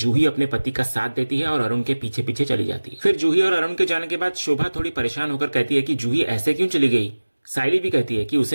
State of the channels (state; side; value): inverted; both; correlation -1.00